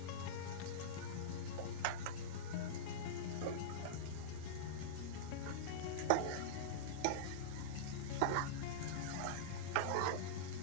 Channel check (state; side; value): different; both; correlation -0.04